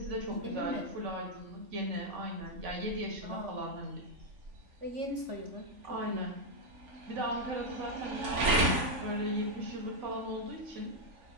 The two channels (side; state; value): left; late; 3.5 ms